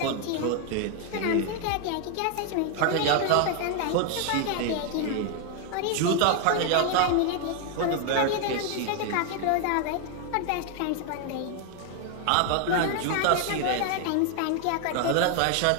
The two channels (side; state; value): both; different; correlation 0.01